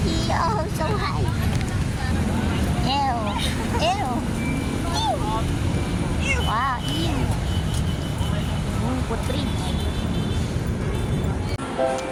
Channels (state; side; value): identical; both; correlation 1.00